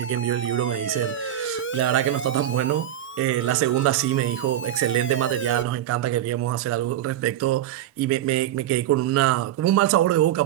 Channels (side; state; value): left; quieter; 12.0 dB